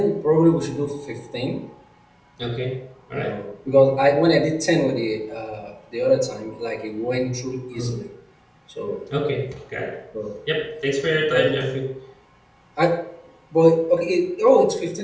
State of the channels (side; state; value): both; identical; correlation 1.00